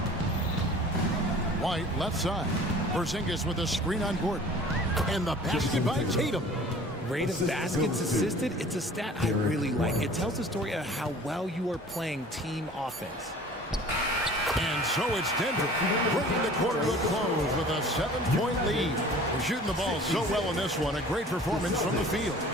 White, left side. Porzingis with a screen on Gordon. And the basket by Tatum. Rate of baskets assisted, it's a stat I really like. It tells the story of how well you are playing team offense. And so it's Denver bringing the quarter to a close with a 7-point lead. They're shooting the ball so well in this one. A great performance from the field.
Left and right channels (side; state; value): both; normal; correlation 0.46